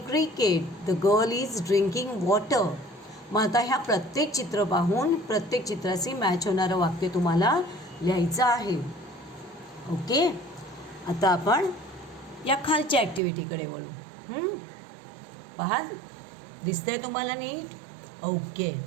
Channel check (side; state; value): left; drops out; at 13.2 s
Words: cricket. The girl is drinking water. मग आता ह्या प्रत्येक चित्र पाहून प्रत्येक चित्राशी मॅच होणारं वाक्य तुम्हाला लिहायचं आहे. ओके. आता आपण या खालच्या ॲक्टिव्हिटीकडे वळू. पहा, दिसतंय तुम्हाला नीट? ओके.